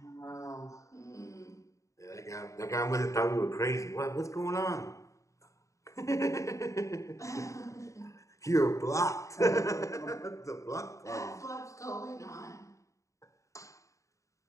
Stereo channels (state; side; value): late; right; 0.15 ms